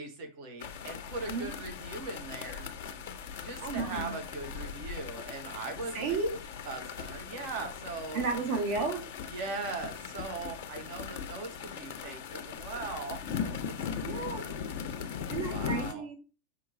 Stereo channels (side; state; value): left; late; 3.4 ms